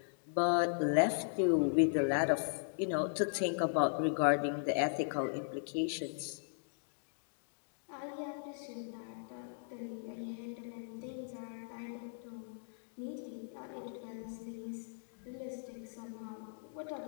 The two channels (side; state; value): right; silent; digital silence